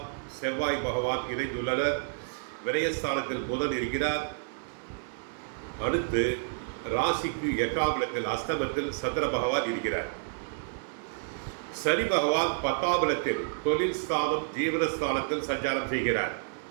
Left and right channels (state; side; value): silent; left; digital silence